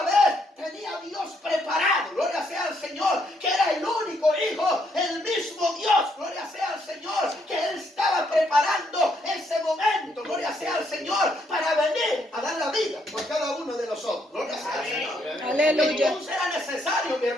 vez, tenía a Dios preparado, gloria sea al Señor, que era el único hijo, el mismo Dios, gloria sea al Señor, que Él estaba preparando ese momento, gloria sea al Señor, para venir a dar la vida por cada uno de nosotros, gloria sea al Señor. Aleluya. Entonces era necesario, mi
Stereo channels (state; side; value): normal; both; correlation 0.73